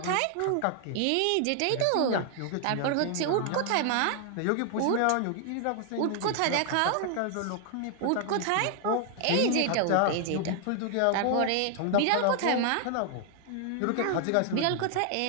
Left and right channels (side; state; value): both; different; correlation 0.00